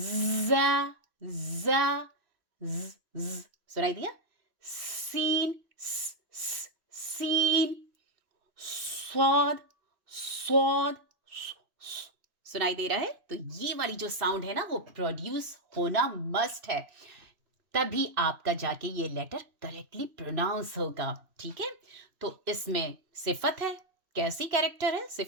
ज़, ज़, ज़, सुनाई दिया? सीन, सीन, स्वाद, स्वाद, सुनाई दे रहा है? तो ये वाली जो साउंड है ना, वो प्रोड्यूस होना मस्ट है, तभी आपका जाके ये लेटर करेक्टली प्रोनाउंस होगा। ठीक है, तो इसमें सिफत है। कैसी कैरेक्टर है?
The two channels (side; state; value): left; late; 3.0 ms